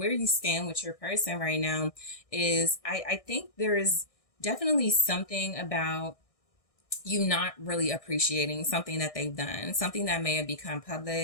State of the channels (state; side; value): late; right; 1.6 ms